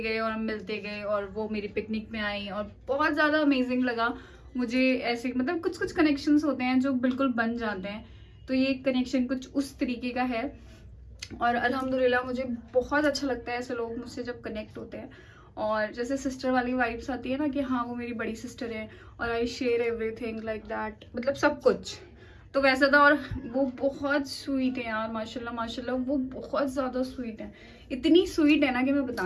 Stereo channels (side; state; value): both; identical; correlation 1.00